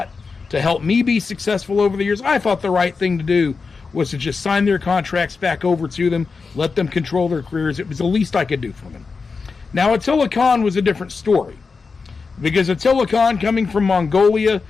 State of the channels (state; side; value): quieter; right; 4.7 dB